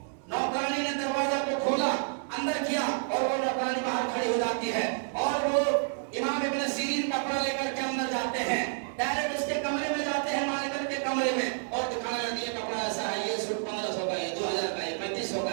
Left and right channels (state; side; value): silent; left; 58 dB below the other